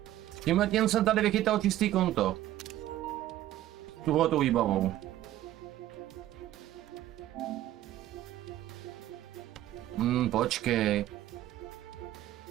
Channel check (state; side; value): quieter; left; 13.7 dB